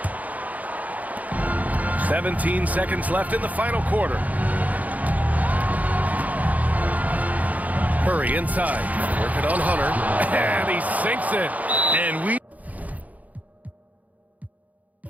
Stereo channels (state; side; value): late; left; 0.075 ms